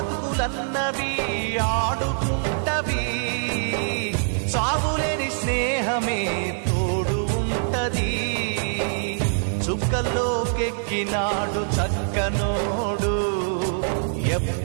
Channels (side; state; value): left; silent; digital silence